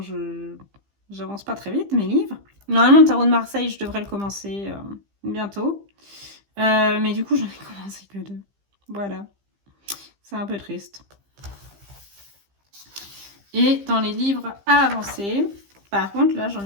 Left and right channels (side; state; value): left; late; 15 ms